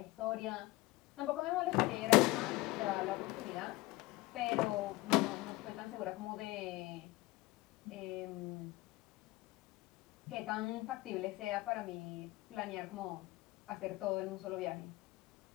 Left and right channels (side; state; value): right; quieter; 20.4 dB